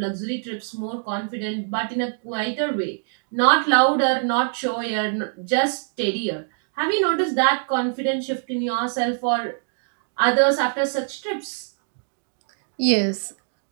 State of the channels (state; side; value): silent; left; digital silence